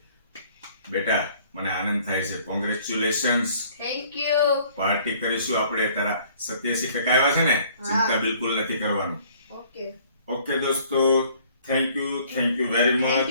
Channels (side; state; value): both; inverted; correlation -0.57